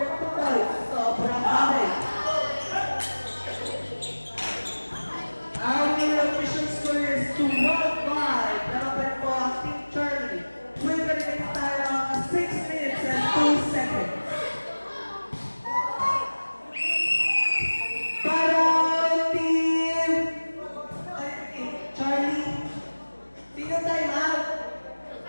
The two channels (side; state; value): both; inverted; correlation -1.00